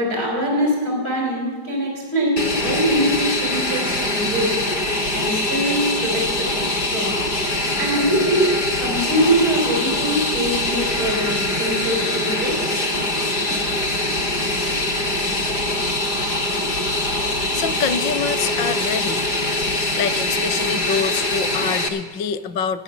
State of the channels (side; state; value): right; late; 4.9 ms